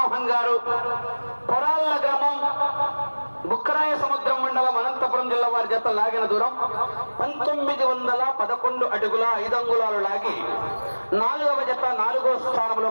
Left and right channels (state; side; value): inverted; both; correlation -1.00